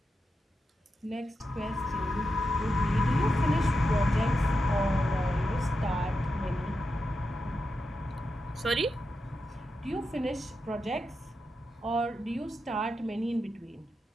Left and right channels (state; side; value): normal; both; correlation 0.88